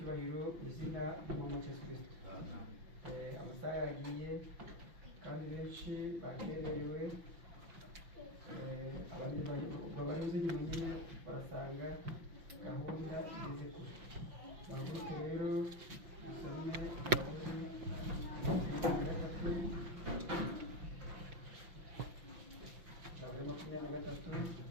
izina ry'umwami wa Yesu Kristo. Amasaha yagiye kandi benshi bakererewe, abandi banyuze inyuma nyine barasanga gahunda igeze kure. Bahaguruke rero dusome Zaburi makumyabiri na gatatu,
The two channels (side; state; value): left; late; 5.9 ms